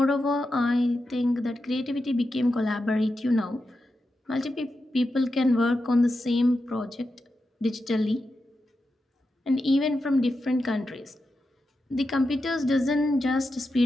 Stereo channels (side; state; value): both; normal; correlation 0.89